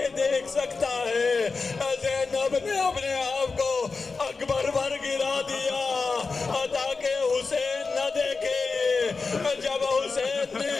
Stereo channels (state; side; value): quieter; right; 4.4 dB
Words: دیکھ سکتا ہے؟ زینب نے اپنے آپ کو اکبر پر گرا دیا تاکہ حسین نہ دیکھے۔ جب حسین